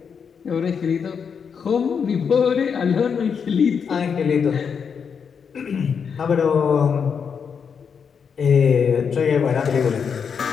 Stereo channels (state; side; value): quieter; right; 6.6 dB